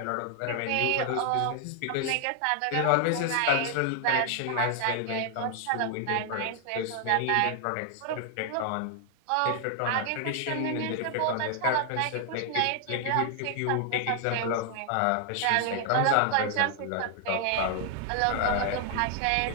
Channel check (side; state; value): both; different; correlation 0.00